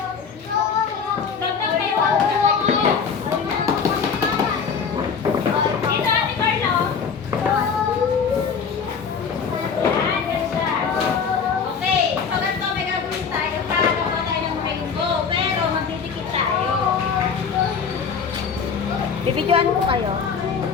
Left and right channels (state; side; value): quieter; right; 6.1 dB